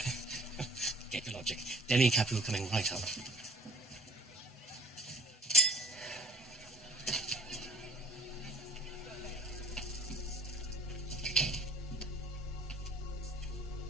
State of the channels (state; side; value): normal; both; correlation 0.56